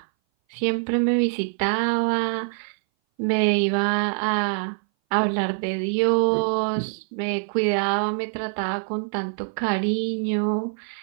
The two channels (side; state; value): left; silent; 59 dB below the other